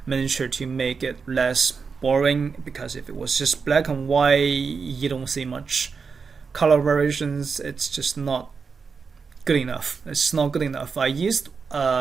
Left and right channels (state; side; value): quieter; left; 5.3 dB